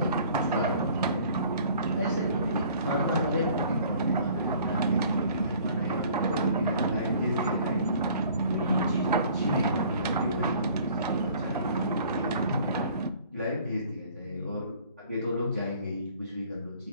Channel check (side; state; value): both; inverted; correlation -0.53